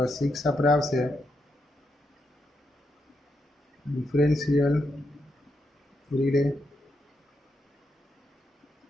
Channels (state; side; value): normal; both; correlation 0.82